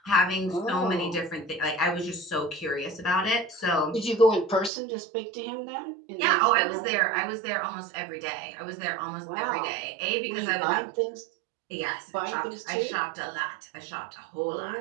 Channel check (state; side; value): drops out; left; at 4.7 s